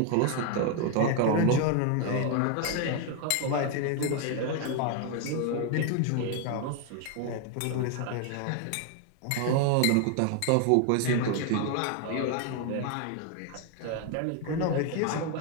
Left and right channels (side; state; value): both; different; correlation 0.01